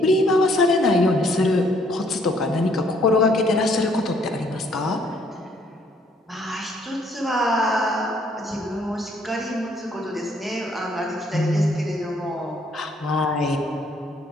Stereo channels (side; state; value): both; normal; correlation 0.65